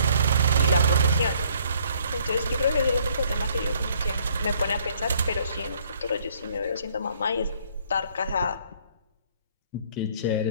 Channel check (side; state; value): both; inverted; correlation -0.62